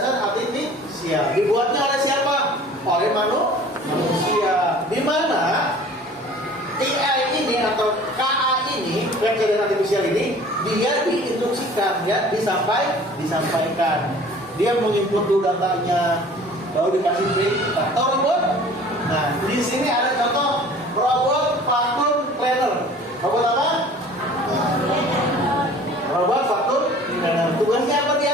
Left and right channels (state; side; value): normal; both; correlation 0.47